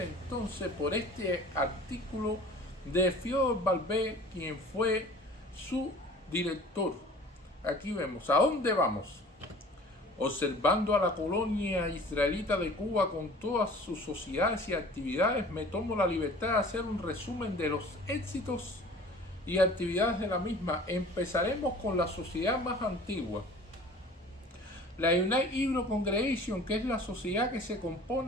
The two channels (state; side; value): normal; both; correlation 0.46